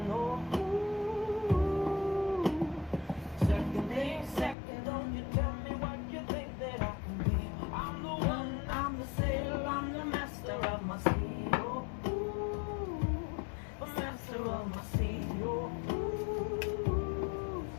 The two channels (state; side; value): drops out; right; at 4.5 s